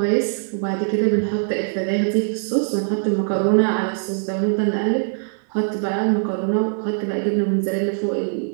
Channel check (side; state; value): left; silent; digital silence